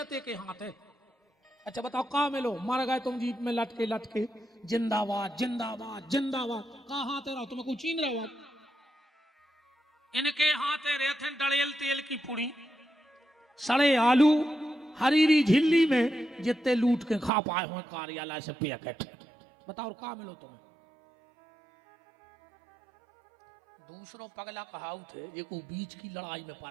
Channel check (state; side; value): drops out; left; at 17.3 s